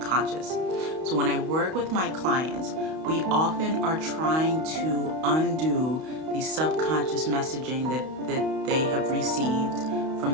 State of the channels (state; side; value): late; left; 32 ms